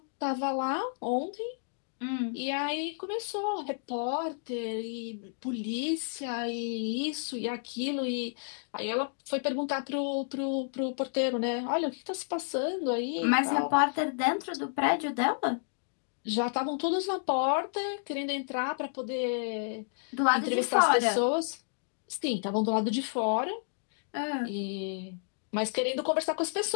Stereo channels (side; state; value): right; silent; digital silence